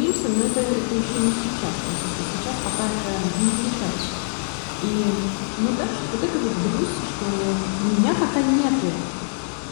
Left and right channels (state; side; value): silent; right; digital silence